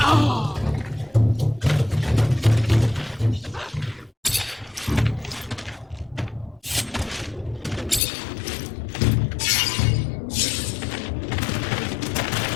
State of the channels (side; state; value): right; drops out; at 8.0 s